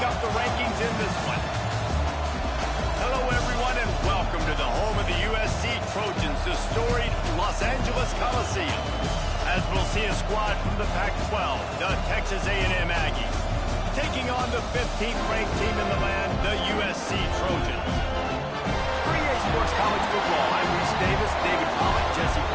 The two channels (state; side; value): identical; both; correlation 1.00